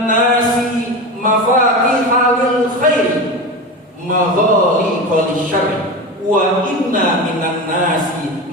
nasi mafatihal khairi maghaliqal syarri wa inna minan nasi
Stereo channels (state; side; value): normal; both; correlation 0.24